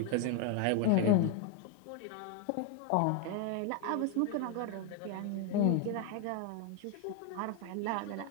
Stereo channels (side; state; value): both; different; correlation 0.01